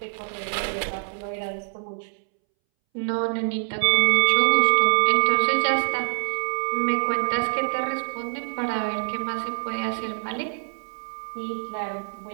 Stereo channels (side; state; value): left; silent; 62 dB below the other